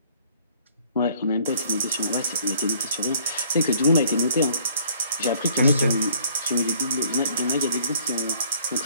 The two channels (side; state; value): both; inverted; correlation -0.59